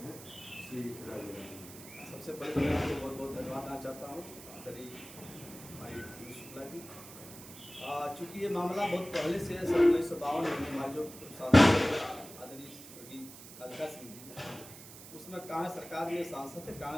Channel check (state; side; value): noise; right; hiss, 16 dB below the sound